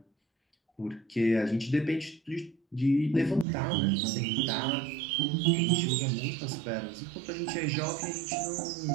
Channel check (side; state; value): left; drops out; at 3.5 s